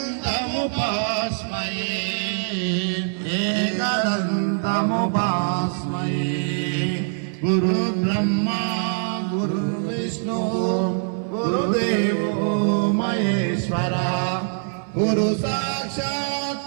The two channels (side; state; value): left; silent; digital silence